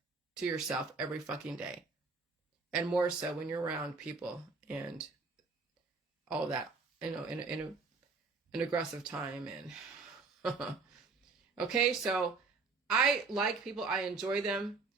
to yourself every fucking day. And more so when you're around people and all that, in an aggressive time. And okay, so I like people. I enjoy them.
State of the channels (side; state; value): left; quieter; 4.2 dB